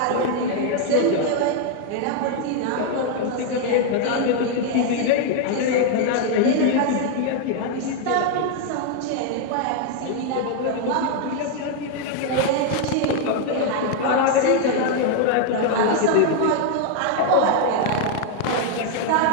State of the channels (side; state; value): both; different; correlation 0.00